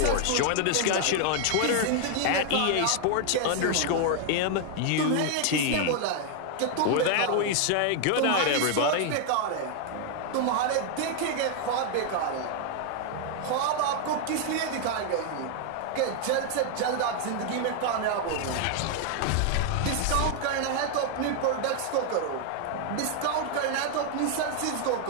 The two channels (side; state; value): both; different; correlation 0.00